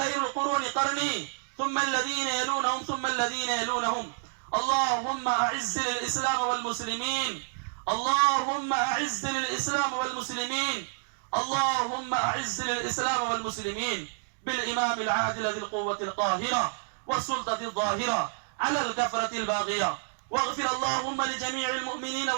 القرون قرني ثم الذين يلونهم ثم الذين يلونهم. اللهم أعز للإسلام والمسلمين، اللهم أعز للإسلام والمسلمين، اللهم أعز للإسلام والمسلمين بالإمام العادل ذي القوة القاهرة والسلطة الظاهرة على الكفرة الباغية. واغفر اللهم لجميع المؤمنين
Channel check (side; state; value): left; silent; digital silence